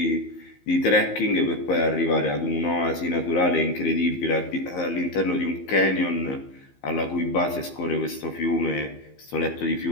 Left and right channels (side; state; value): right; late; 15 ms